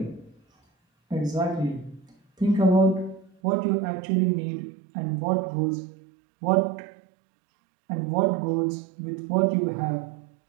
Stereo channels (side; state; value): left; drops out; at 3.4 s